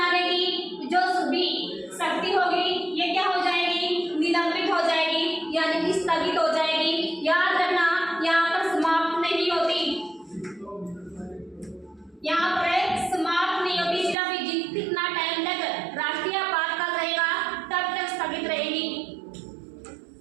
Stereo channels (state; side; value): drops out; left; at 14.2 s